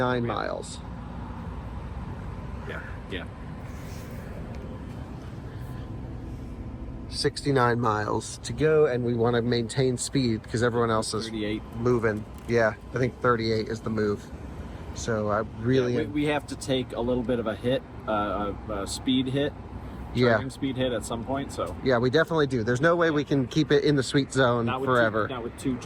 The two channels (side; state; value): both; identical; correlation 1.00